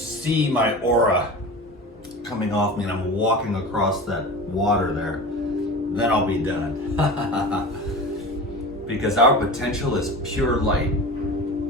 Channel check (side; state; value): both; normal; correlation 0.32